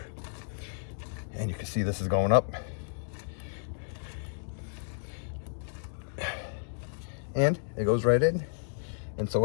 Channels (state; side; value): silent; right; digital silence